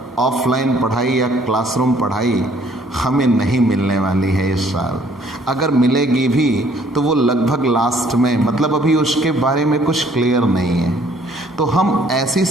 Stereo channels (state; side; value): normal; both; correlation 0.61